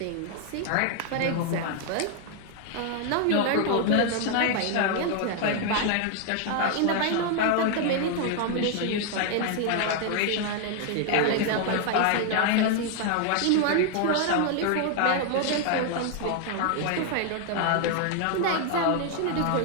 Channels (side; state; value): both; different; correlation 0.00